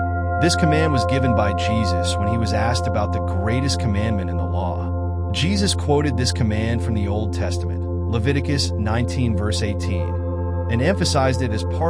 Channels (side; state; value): both; identical; correlation 1.00